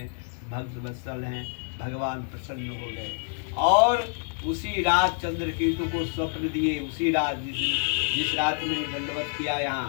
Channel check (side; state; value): right; silent; 60 dB below the other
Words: भक्त वत्सल हैं। भगवान प्रसन्न हो गए और उसी रात चंद्रकेतु को स्वप्न दिए। उसी रात जिस रात में दंडवत किया,